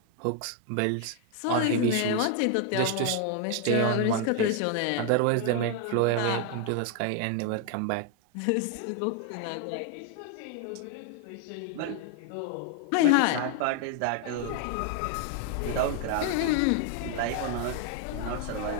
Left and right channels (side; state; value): both; different; correlation 0.00